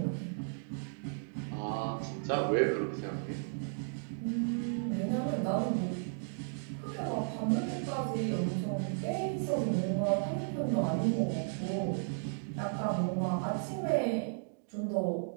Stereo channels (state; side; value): silent; left; digital silence